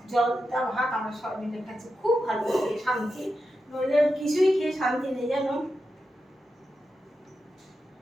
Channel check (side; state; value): both; normal; correlation 0.89